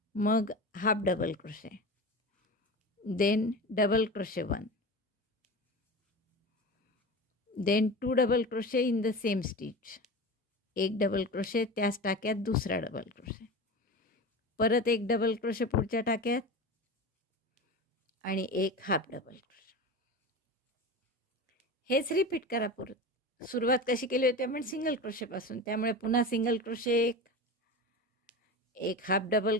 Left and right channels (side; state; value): both; normal; correlation 0.29